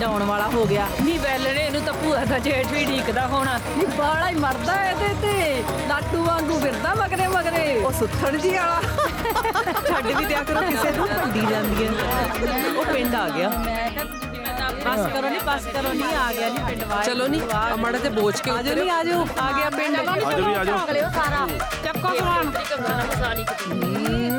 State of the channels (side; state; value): both; identical; correlation 1.00